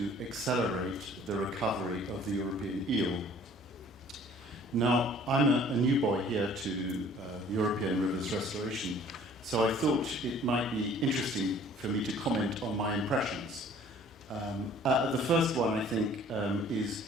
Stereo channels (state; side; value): normal; both; correlation 0.53